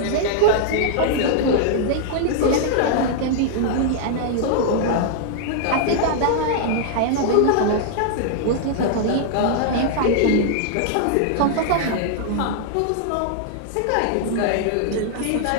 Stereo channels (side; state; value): both; different; correlation -0.01